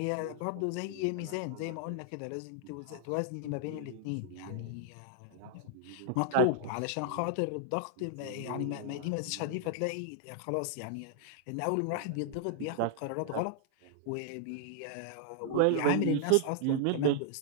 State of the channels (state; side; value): different; both; correlation -0.01